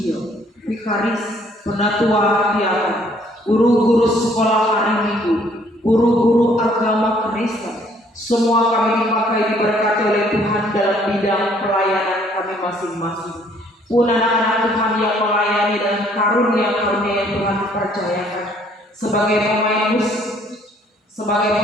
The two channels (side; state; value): both; normal; correlation 0.62